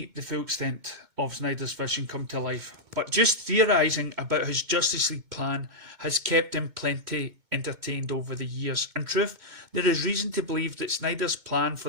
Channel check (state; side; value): late; left; 2.2 ms